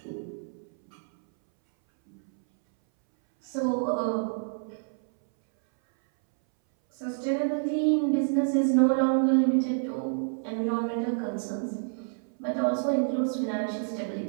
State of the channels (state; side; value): silent; left; 59 dB below the other